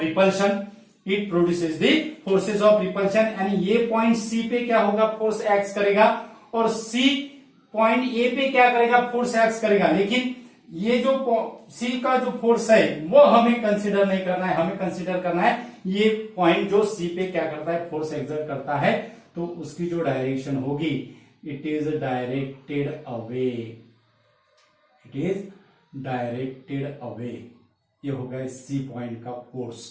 repulsion, it produces the forces of repulsion. यानी ये पॉइंट सी पे क्या होगा, फोर्स एक्स करेगा, और सी पॉइंट ए पे क्या करेगा, फोर्स एक्स करेगा। लेकिन ये जो सी का जो फोर्स है वो हमें कंसीडर नहीं करना है, हमें कंसीडर करना है ये पॉइंट जो सी पे क्या करता है, फोर्स एक्सर्ट करता है, तो उसकी जो डायरेक्शन होगी it is directed away, it is directed away. ये हो गया सी पॉइंट का फोर्स,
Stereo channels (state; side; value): identical; both; correlation 1.00